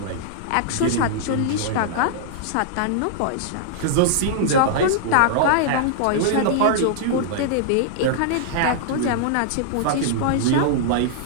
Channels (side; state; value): both; different; correlation -0.01